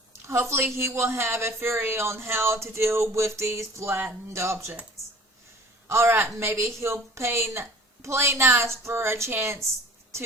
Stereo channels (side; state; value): both; normal; correlation 0.47